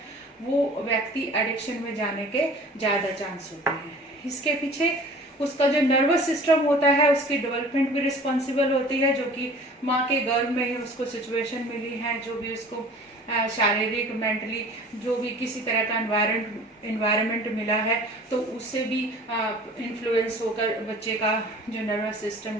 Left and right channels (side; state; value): both; normal; correlation 0.45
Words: वो व्यक्ति एडिक्शन में जाने के ज़्यादा चांस होते हैं। इसके पीछे उसका जो नर्वस सिस्टम होता है उसकी डेवलपमेंट भी रिस्पॉन्सिबल होती है, जो कि माँ के गर्भ में ही उसको सिचुएशन मिली है, जो भी उसको शारीरिक मेंटली जो भी किसी तरह का एनवायरनमेंट मिला है, तो उससे भी इन्फ्लुएंस होकर बच्चे का जो नर्वस सिस्टम